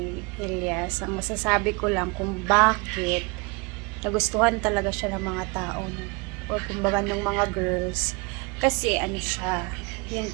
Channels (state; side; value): quieter; left; 28.9 dB